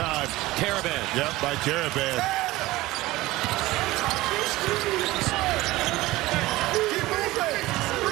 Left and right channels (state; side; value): quieter; left; 18.5 dB